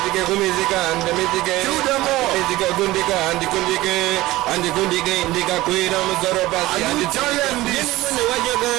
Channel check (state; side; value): quieter; left; 17.8 dB